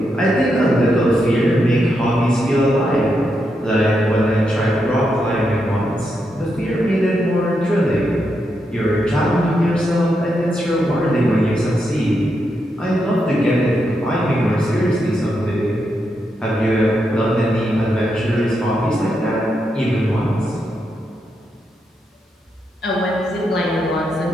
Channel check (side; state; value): both; normal; correlation 0.83